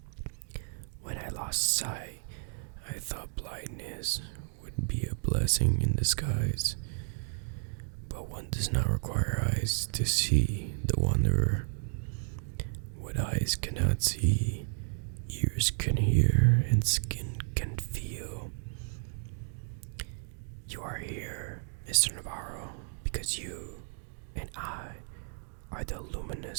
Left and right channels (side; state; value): left; silent; digital silence